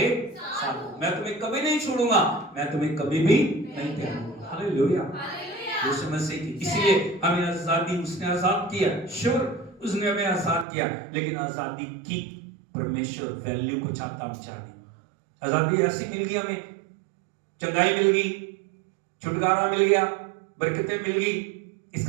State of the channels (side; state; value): left; drops out; at 10.7 s